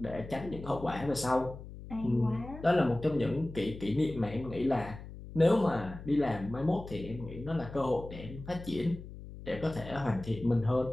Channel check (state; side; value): noise; left; hum, 13 dB below the sound